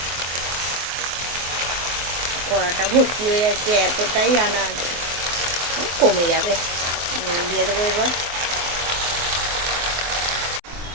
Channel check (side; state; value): left; late; 23 ms